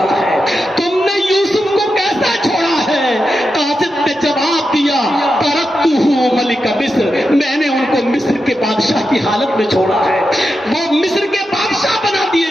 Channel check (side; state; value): both; normal; correlation 0.88